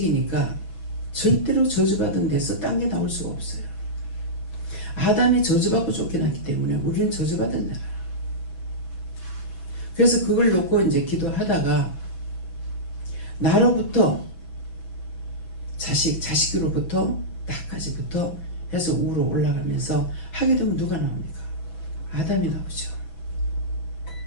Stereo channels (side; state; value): right; late; 6.1 ms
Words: 절대로 저주받은 데서 딴 게 나올 수가 없어요. 아담이 저주받고 쫓겨났기 때문에 우리는 저주받은 자라. 그래서 그걸 놓고 이제 기도하다가 나로부터 자식으로부터 나까지부터 해서 우로 올라가면서 하게 되면 누가 나옵니까? 아담이 나오죠.